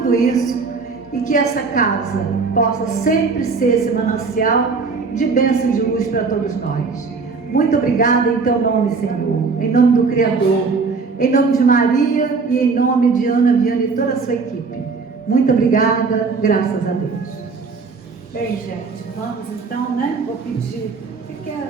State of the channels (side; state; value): left; quieter; 4.6 dB